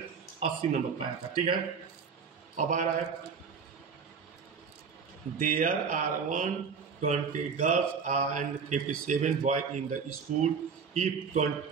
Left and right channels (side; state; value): left; quieter; 5.8 dB